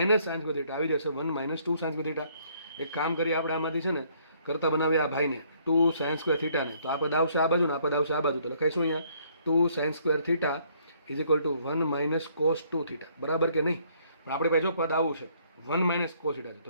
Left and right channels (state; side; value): inverted; both; correlation -0.65